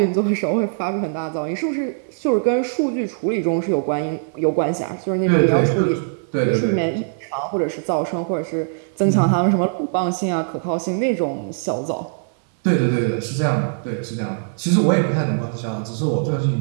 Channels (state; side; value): silent; left; 59 dB below the other